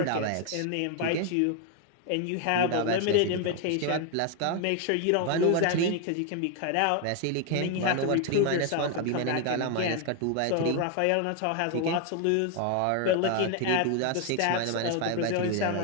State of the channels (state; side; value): different; both; correlation 0.01